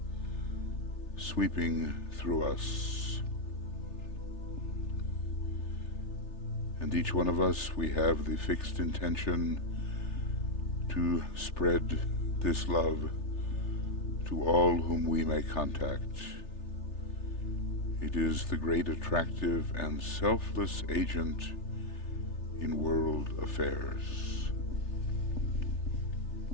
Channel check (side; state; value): right; late; 3.3 ms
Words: sweeping through us. And each one of us, we have the fixed intention to spread this love to all whom we may contact. It is the great attractive and selfless agent in world affairs.